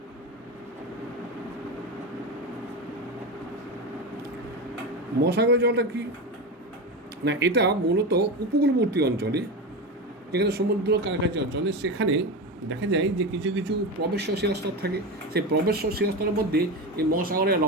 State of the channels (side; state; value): both; normal; correlation 0.21